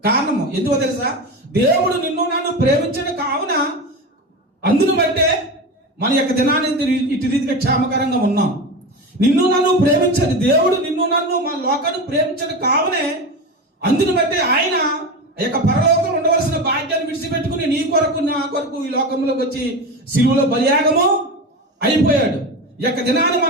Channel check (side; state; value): both; normal; correlation 0.24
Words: కారణము ఎందుకో తెలుసా? దేవుడు నిన్ను నన్ను ప్రేమించడం కావున అందును బట్టే మన యొక్క దినాన్ని ఇటు రీతిగా క్షేమకరంగా ఉన్నాం. నిన్ను నన్ను ప్రేమించదు దేవుడు, నిన్ను నన్ను మన లోకాన్ని ప్రేమించడం కావునే అందును బట్టే ఆయన యొక్క పరలోకంలో ఉండవలసిన భాగ్యాన్ని విడిచిపెట్టుకుని నీ కొరకు, నా కొరకు ఈ లోకంలోకి వచ్చి శిలువలో బలియాగము అయిపోయాడు. ఈ యొక్క దినాన్ని